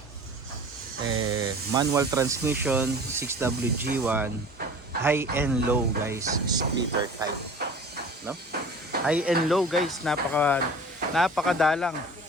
manual transmission, 6WG1, high and low, guys, splitter type, no? High and low, guys, napakadalang,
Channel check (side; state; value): both; normal; correlation 0.42